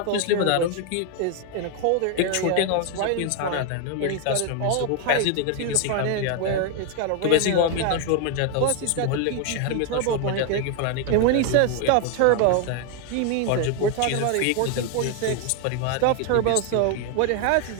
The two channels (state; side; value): different; both; correlation 0.01